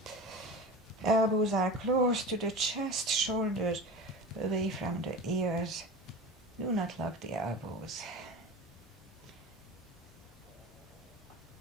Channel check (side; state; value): both; normal; correlation 0.32